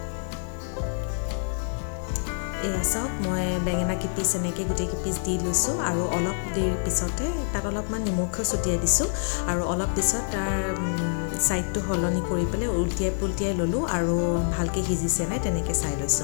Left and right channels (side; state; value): right; silent; digital silence